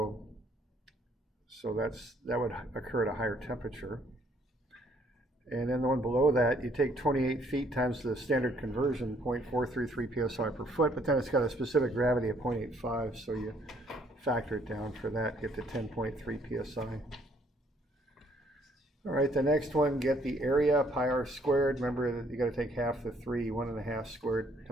that would occur at a higher temperature. And then the one below that, you take 28 feet times the standard conversion, 0.433 psi per foot, but then it's got a specific gravity of 0.85, so you factor it down for that, get to 10.3 psi. All right, the next one, get the area, pi r squared. Remember that you got to take half the 3, 1.5 squared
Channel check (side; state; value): both; normal; correlation 0.65